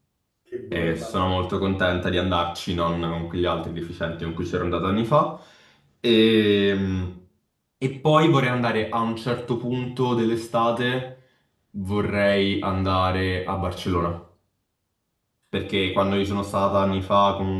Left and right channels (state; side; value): identical; both; correlation 1.00